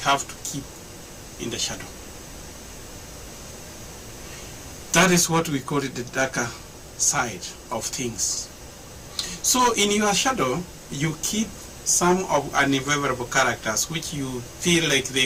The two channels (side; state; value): both; identical; correlation 1.00